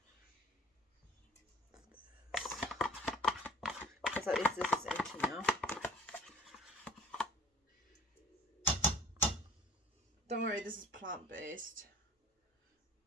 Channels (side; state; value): both; normal; correlation 0.50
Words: Because at least this is empty now. Don't worry, this is plant-based.